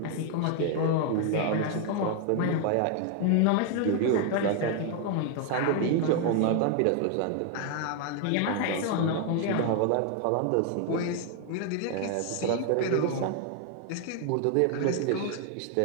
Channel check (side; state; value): both; different; correlation 0.00